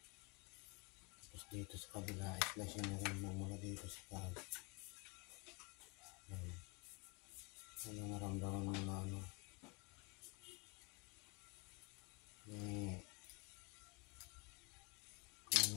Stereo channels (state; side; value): quieter; right; 28.4 dB